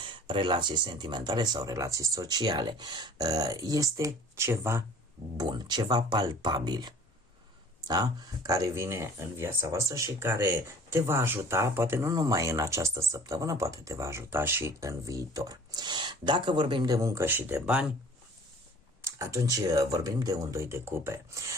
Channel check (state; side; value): normal; both; correlation 0.48